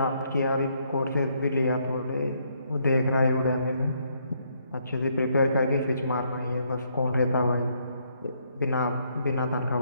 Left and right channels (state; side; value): inverted; both; correlation -0.72